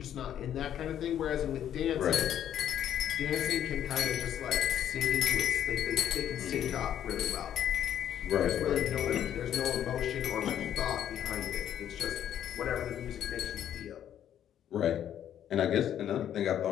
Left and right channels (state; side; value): quieter; right; 10.3 dB